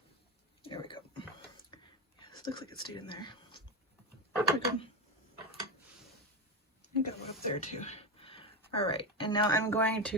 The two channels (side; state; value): both; normal; correlation 0.13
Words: There we go. This looks like it stayed in there. There we go. I got one up there too. All right, and now I'm going to